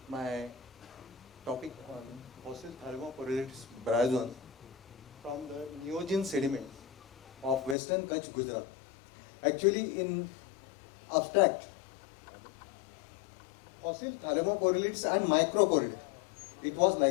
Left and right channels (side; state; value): right; drops out; at 7.8 s